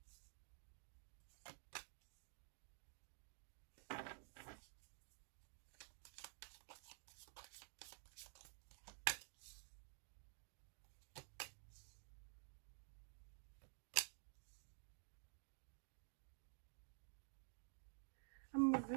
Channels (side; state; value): left; silent; digital silence